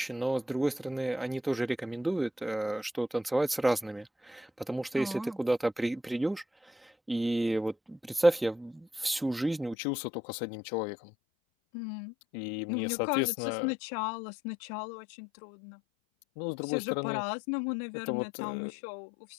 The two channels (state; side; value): drops out; right; at 9.8 s